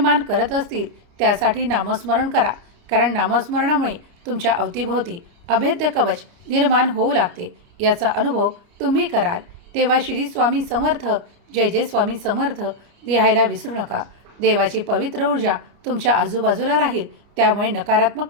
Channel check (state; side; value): late; left; 29 ms